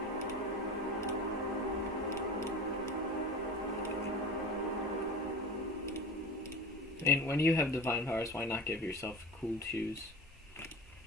And when you have divine powers, why not give yourself cool shoes?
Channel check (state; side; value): normal; both; correlation 0.32